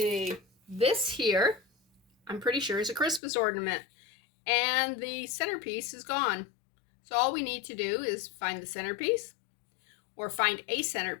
This here, I'm pretty sure, is a Christmas ornament, and the centerpiece is gone. So all we need to do is find the centerpiece, or find a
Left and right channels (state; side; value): drops out; right; at 3.2 s